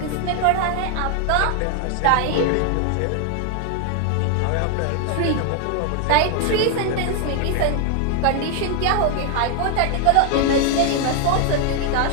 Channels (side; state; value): both; different; correlation 0.00